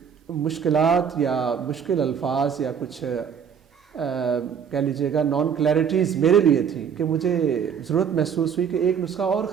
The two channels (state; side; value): quieter; left; 7.4 dB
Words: مشکلات یا مشکل الفاظ یا کچھ کہہ لیجئے گا نان کلیئرٹیز میرے لیے تھی کہ مجھے ضرورت محسوس ہوئی کہ ایک نسخہ اور